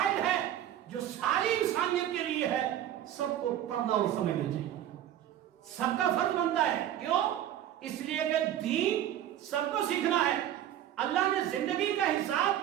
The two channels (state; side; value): quieter; left; 11.6 dB